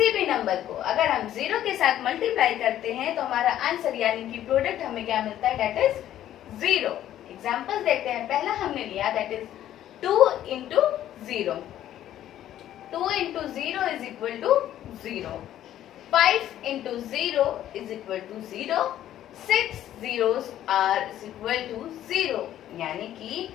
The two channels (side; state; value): right; quieter; 12.1 dB